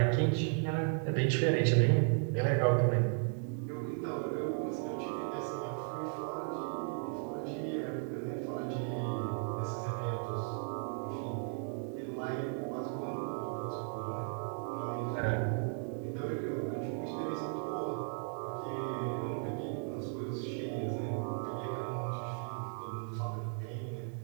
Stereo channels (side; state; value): left; silent; 54 dB below the other